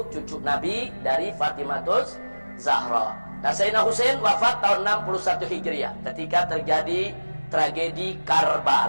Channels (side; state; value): both; inverted; correlation -1.00